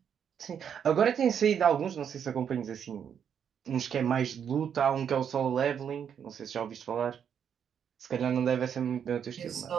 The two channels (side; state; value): left; quieter; 8.1 dB